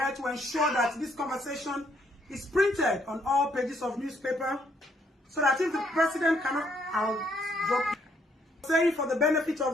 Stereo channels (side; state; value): both; normal; correlation 0.70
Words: to ensure that this conversation is printed on all pages of newspaper, so that if the president cannot, I'll drop. Saying for the benefit